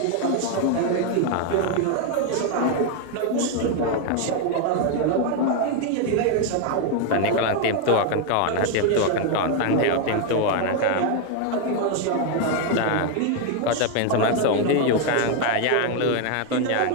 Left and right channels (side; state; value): both; different; correlation 0.01